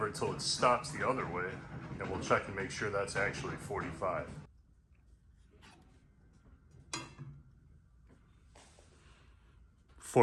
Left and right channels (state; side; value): identical; both; correlation 1.00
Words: until it stops the other way, and we'll check and make sure that's actually 45.